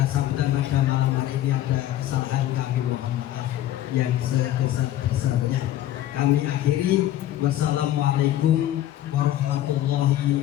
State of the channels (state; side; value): quieter; right; 13.1 dB